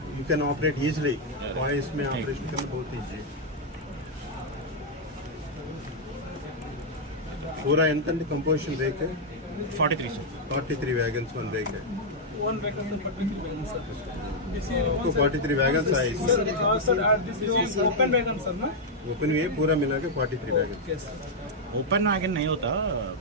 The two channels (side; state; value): both; normal; correlation -0.03